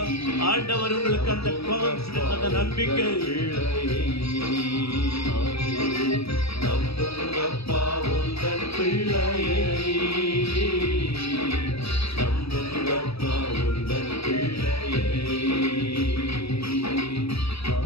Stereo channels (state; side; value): late; right; 0.77 ms